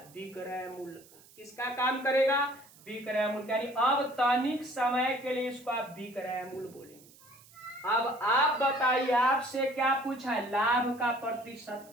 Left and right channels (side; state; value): right; noise; hiss, 25 dB below the sound